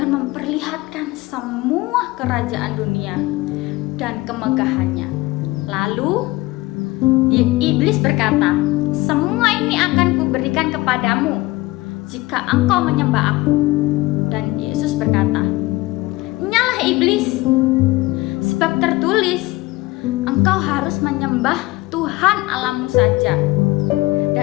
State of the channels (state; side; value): quieter; right; 20.2 dB